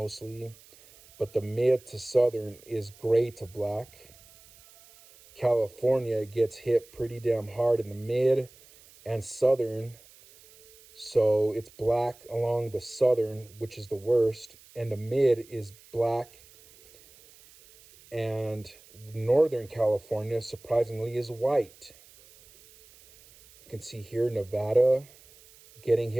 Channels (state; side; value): noise; right; hiss, 25 dB below the sound